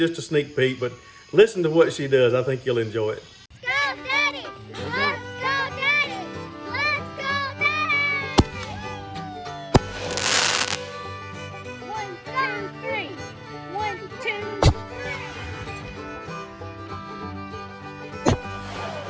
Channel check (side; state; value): both; identical; correlation 1.00